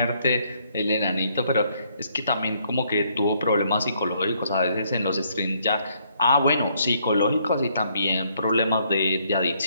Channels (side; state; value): both; inverted; correlation -0.70